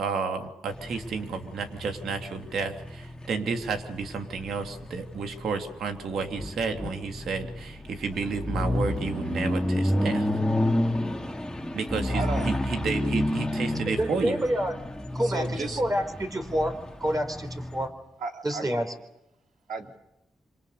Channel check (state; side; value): normal; both; correlation 0.85